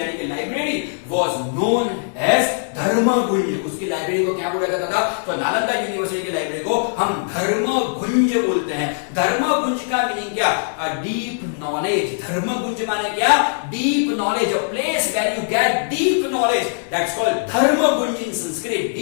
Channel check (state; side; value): silent; right; digital silence